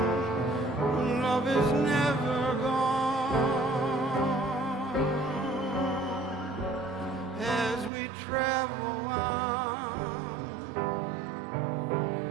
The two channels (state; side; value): drops out; left; at 7.9 s